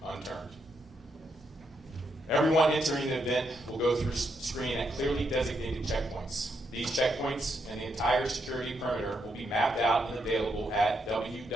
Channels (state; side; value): normal; both; correlation 0.79